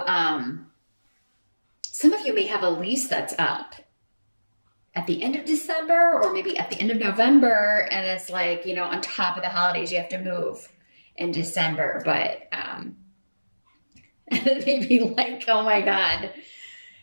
some of you may have a lease that's up at the end of December, or maybe at the end of November. And it's like, on top of the holidays, you have to move in December, but, maybe like, oh my God,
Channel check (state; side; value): inverted; both; correlation -1.00